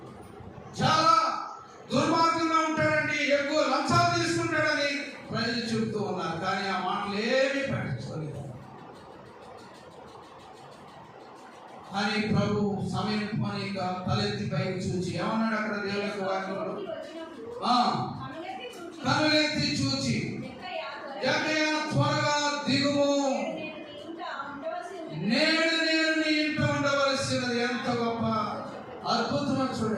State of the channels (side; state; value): both; identical; correlation 1.00